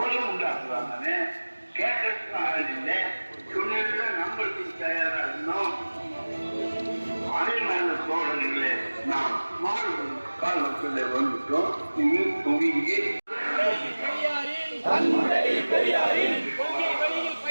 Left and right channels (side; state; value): both; inverted; correlation -1.00